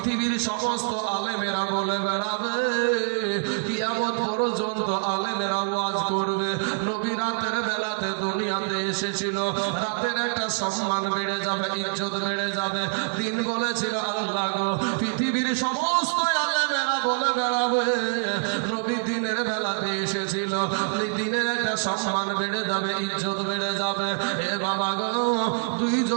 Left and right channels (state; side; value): silent; left; 55 dB below the other